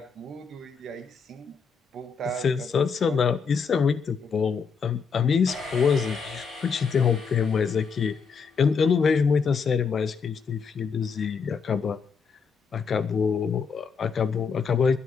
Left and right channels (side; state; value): right; quieter; 5.7 dB